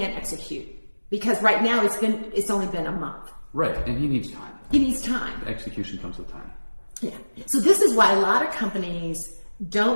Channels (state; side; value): inverted; both; correlation -1.00